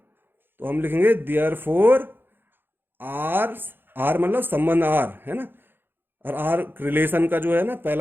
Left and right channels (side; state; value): left; late; 0.10 ms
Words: हम लिखेंगे देयर फोर आर, आर मतलब संबंध आर, है ना, और आर रिलेशन का जो है ना